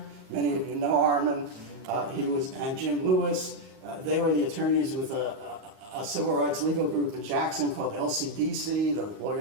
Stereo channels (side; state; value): left; late; 38 ms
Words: Many of you know Armin. And Jim Lewis. They were the attorneys with a civil rights legal group in Jackson called LCDC, the